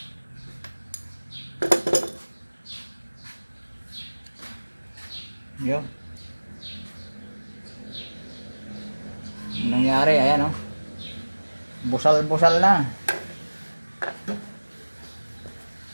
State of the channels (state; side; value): inverted; both; correlation -1.00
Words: Yun. Nangyari, ayan o. Busal-busal na.